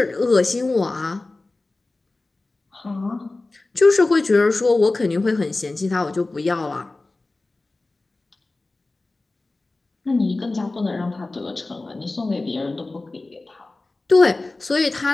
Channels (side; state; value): right; quieter; 3.2 dB